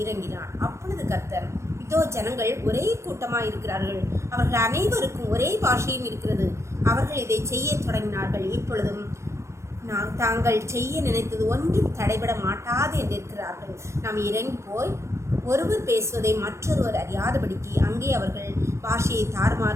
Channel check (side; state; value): left; late; 0.14 ms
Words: இறங்கினார். அப்பொழுது கர்த்தர், இதோ ஜனங்கள் ஒரே கூட்டமாக இருக்கிறார்கள். அவர்கள் அனைவருக்கும் ஒரே பாஷையும் இருக்கிறது. அவர்கள் இதை செய்ய தொடங்கினார்கள். இப்பொழுதும் தாங்கள் செய்ய நினைத்தது ஒன்றும் தடைபட மாட்டாது என்று இருக்கிறார்கள். நாம் இறங்கி போய் ஒருவர் பேசுவதை மற்றொருவர் அறியாதபடிக்கு அங்கே அவர்கள் பாஷையை